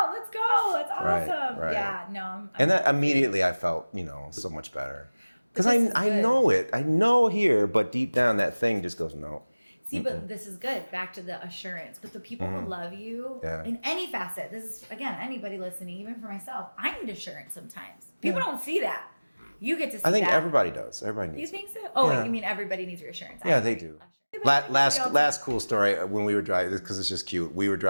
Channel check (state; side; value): inverted; both; correlation -1.00